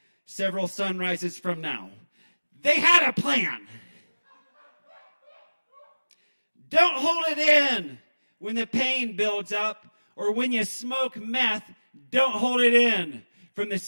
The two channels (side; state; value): both; inverted; correlation -1.00